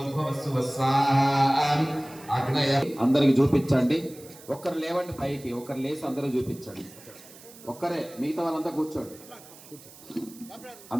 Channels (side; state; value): right; noise; hiss, 20 dB below the sound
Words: శుభ స్వాహ అగ్నయ అందరికి చూపించండి. ఒక్కరు లేవండి పైకి, ఒకరు లేచి అందరూ చూపించండి. ఒక్కరే, మిగతా వాళ్ళంతా కూర్చోండి.